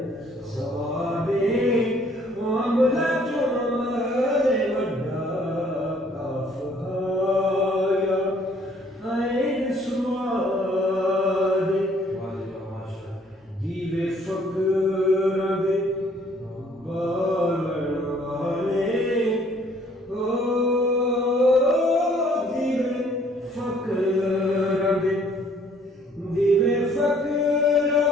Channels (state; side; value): normal; both; correlation 0.61